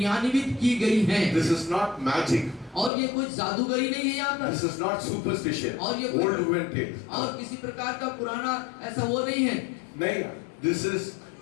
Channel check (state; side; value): drops out; right; at 2.9 s